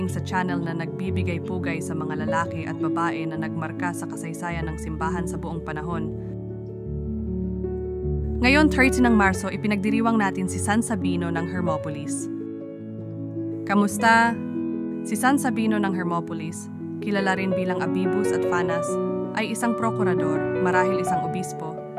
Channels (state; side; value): identical; both; correlation 1.00